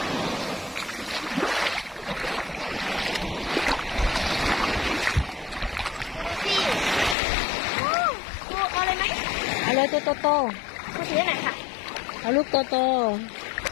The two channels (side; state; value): right; drops out; at 7.2 s